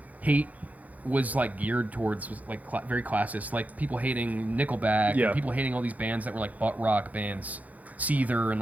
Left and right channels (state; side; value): late; left; 0.076 ms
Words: hate was like geared towards like very classist, like people hating Nickelback and people hating all these bands that were like butt rock bands, Seether and